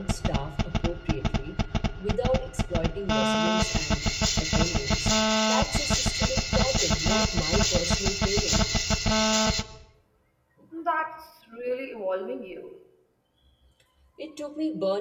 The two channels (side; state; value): both; identical; correlation 1.00